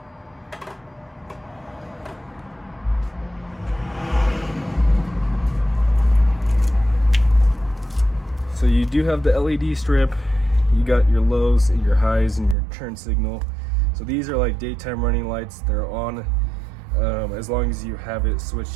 So you do have the LED strip, you got your lows and your highs and your turn signal. So these are like daytime running lights. They're on as long as you have it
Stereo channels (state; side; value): drops out; left; at 12.6 s